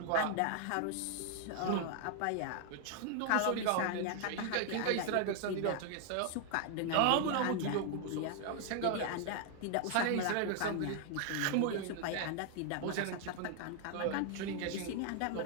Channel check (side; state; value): both; different; correlation 0.00